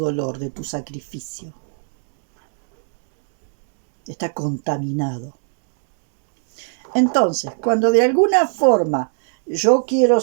de tu sacrificio. Está contaminado. Entonces, cuando de alguna forma yo quiero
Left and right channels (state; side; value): silent; left; digital silence